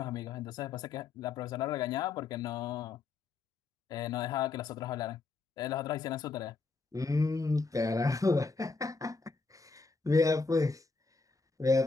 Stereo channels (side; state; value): right; quieter; 4.1 dB